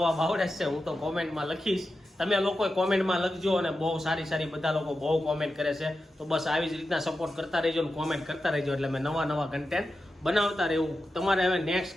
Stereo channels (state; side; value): normal; both; correlation 0.91